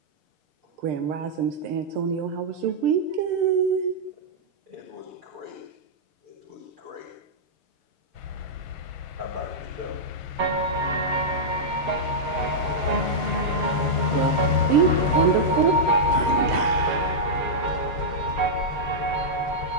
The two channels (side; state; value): left; late; 6.7 ms